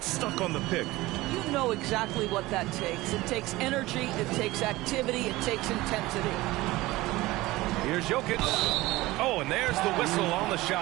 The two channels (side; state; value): left; quieter; 19.0 dB